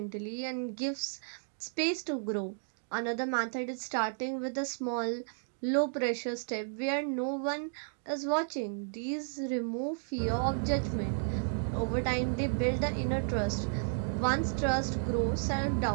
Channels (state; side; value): silent; left; digital silence